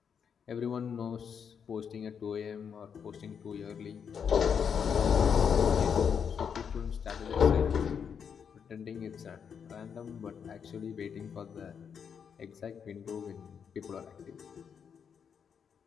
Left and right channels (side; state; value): right; quieter; 7.1 dB